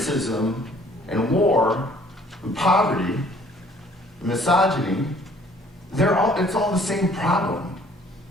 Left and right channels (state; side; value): normal; both; correlation 0.57